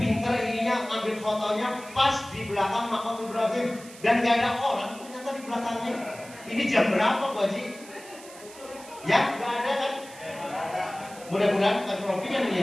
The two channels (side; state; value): right; noise; hiss, 18 dB below the sound